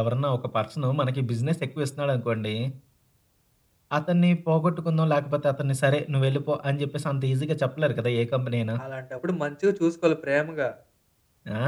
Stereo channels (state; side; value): identical; both; correlation 1.00